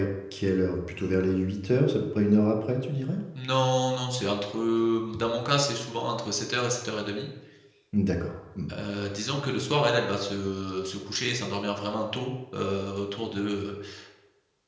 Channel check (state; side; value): identical; both; correlation 1.00